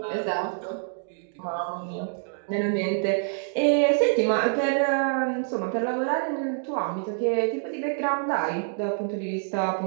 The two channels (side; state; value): left; silent; digital silence